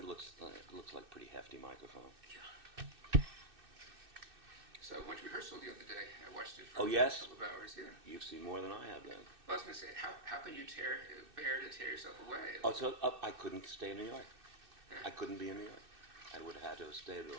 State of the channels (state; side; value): late; left; 2.6 ms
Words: looks like a pretty hefty microphone. Yeah. So I went to rehearsal the other day. I watched it for Oh, yes? a couple of hours. Yeah. You've seen more than I have then. Well, I was going to say, how can you bear to tear yourself away? Oh, so I couldn't stay in New York. I couldn't be in New York. I would have had to stay at a